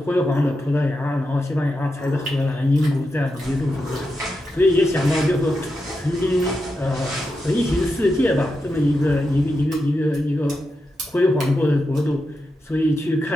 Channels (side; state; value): both; normal; correlation 0.87